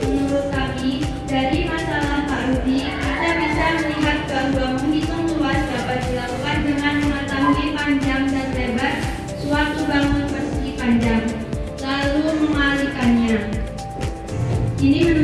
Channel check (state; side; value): identical; both; correlation 1.00